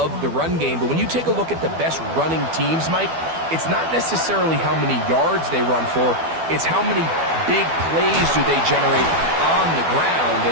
the run game, but when you take a look at the best running teams, Mike, it's not necessarily how many yards they run for, it's how many big plays do they generate on the ground.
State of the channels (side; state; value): left; late; 12 ms